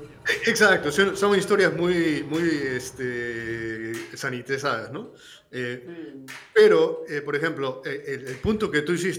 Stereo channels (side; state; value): both; identical; correlation 1.00